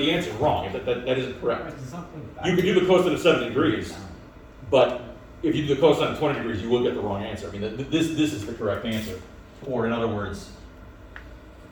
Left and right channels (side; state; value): both; identical; correlation 1.00